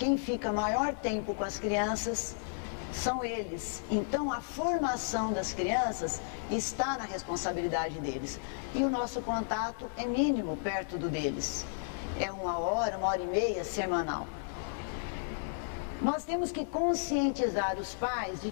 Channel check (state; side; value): silent; right; 56 dB below the other